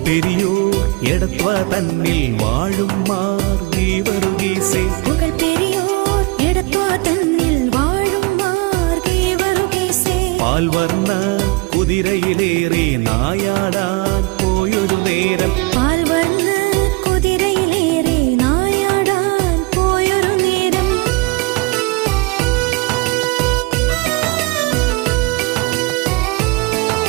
பெரியோர் எடத்வா தன்னில் வாழும் மார்கீவருகேசே புகழ் பெரியோர் எடத்வா தன்னில் வாழும் மார்கீவருகேசே பால்வர்ண குதிரையிலேறி நாயாடா போயொரு நேரம் பால்வர்ண குதிரையிலேறி நாயாடா போயொரு நேரம்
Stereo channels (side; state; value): left; quieter; 26.4 dB